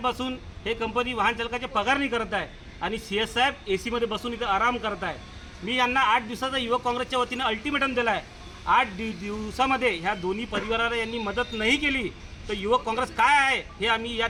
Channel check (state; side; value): identical; both; correlation 1.00